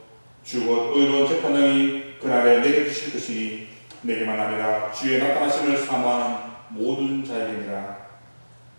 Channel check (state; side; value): inverted; both; correlation -1.00